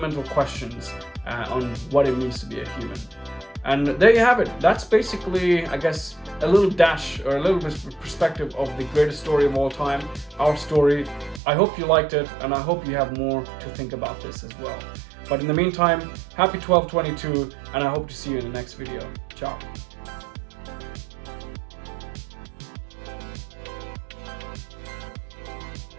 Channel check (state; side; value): drops out; left; at 11.4 s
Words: questions on what it means to be a human. And there you have it. That's basically, I guess, a little dash or a little bit perspective of the greatest story of all time, our story. I hope you liked it, and I hope you have more to think about this as well. But in the meantime, happy 12/22, and I hope to see you in the next video. Ciao.